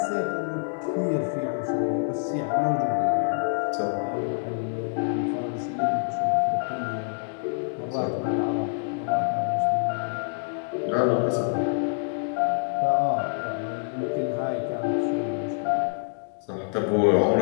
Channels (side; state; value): right; silent; digital silence